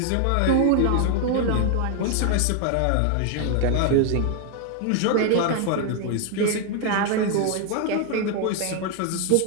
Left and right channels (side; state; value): both; different; correlation 0.00